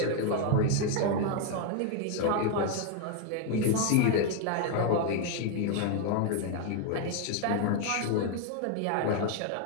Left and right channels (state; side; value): different; both; correlation 0.01